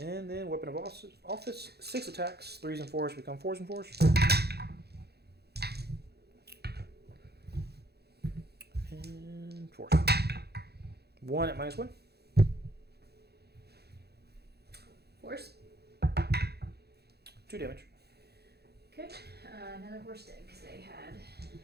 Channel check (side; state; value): left; late; 0.47 ms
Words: And then Weapon of Office. 6 attacks, 3s and 4s become 4s and 4s. And 4s. 1 at -1. Horse. 2 damage. Okay, another horse dead because they had